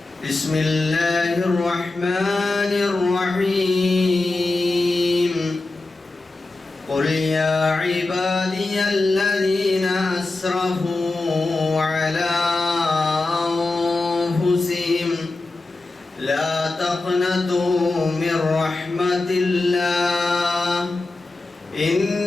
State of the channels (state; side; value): quieter; right; 3.2 dB